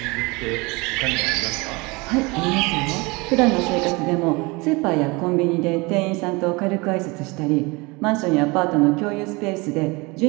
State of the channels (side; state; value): left; quieter; 25.8 dB